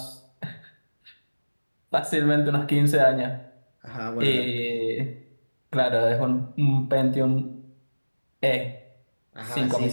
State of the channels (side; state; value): both; inverted; correlation -1.00